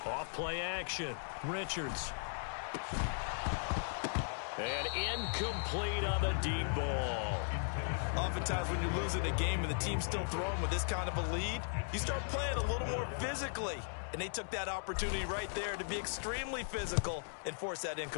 Off-play action. Richards. And incomplete on the deep ball. Oftentimes when you're losing a game and the team's still throwing with this kind of a lead, you start playing a little more physically. And they took that opportunity right there to be extremely physical and force that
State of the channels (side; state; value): right; silent; digital silence